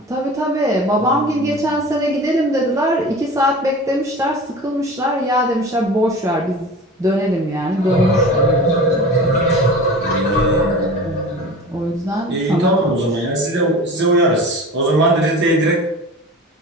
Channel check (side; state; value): both; normal; correlation 0.37